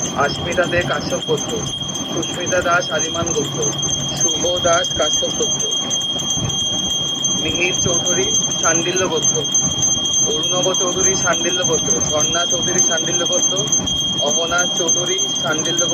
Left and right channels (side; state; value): both; identical; correlation 1.00